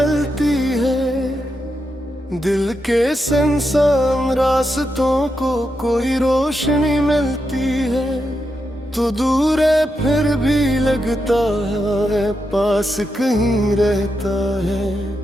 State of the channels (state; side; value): normal; both; correlation 0.85